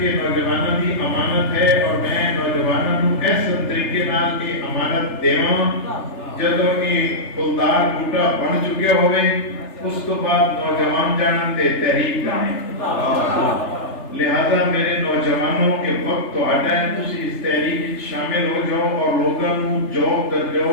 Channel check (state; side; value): late; right; 3.4 ms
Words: یہ نوجوانوں کی امانت ہے اور میں نوجوانوں کو ایسا طریقے نال یہ امانت دیواں جدو یہ پھلدار بوٹا بن چکے ہوئے اس تو بعد نوجوان جانن تے تحریک کریں لہذا میرے نوجوانوں کے وقت تو آٹا ہے تسی اس تحریک شامل ہو جاؤ اور لوگوں کو جوب در جاؤ